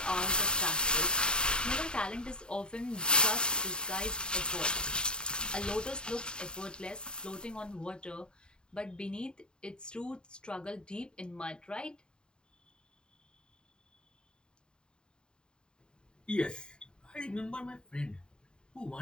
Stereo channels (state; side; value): late; right; 0.049 ms